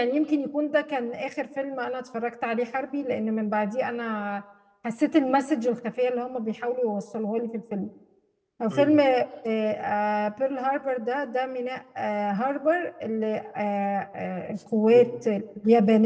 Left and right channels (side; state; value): both; identical; correlation 1.00